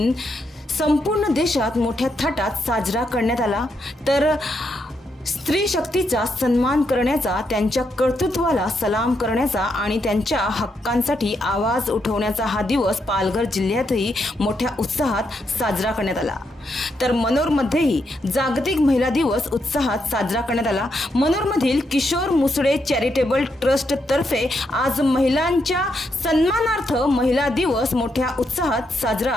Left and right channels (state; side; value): normal; both; correlation 0.80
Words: संपूर्ण देशात मोठ्या थाटात साजरा करण्यात आला। तर स्त्री शक्तीचा सन्मान करण्याचा, त्यांच्या कर्तृत्वाला सलाम करण्याचा आणि त्यांच्या हक्कांसाठी आवाज उठवण्याचा हा दिवस पालघर जिल्ह्यातही मोठ्या उत्साहात साजरा करण्यात आला। तर मनोरमध्येही जागतिक महिला दिवस उत्साहात साजरा करण्यात आला। मनोरमधील किशोर मुसळे चॅरिटेबल ट्रस्ट तर्फे आज महिलांच्या सन्मानार्थ महिला दिवस मोठ्या उत्साहात